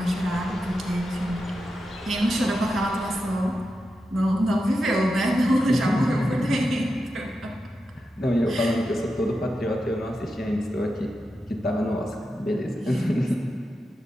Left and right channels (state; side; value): normal; both; correlation 0.89